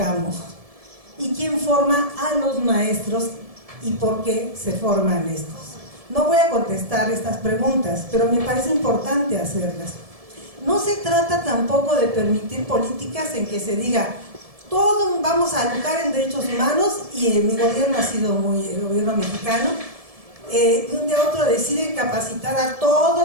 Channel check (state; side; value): late; left; 1.7 ms